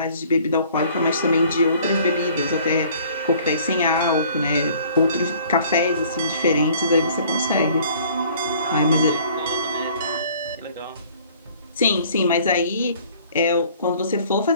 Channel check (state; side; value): inverted; both; correlation -0.54